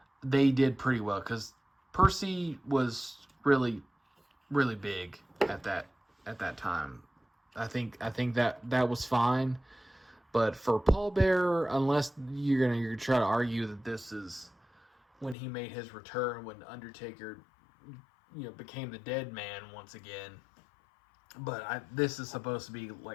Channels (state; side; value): drops out; right; at 15.4 s